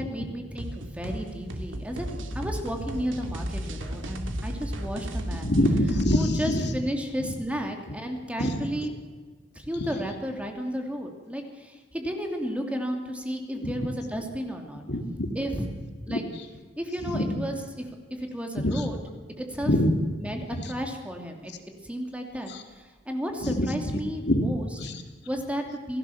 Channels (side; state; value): both; normal; correlation 0.77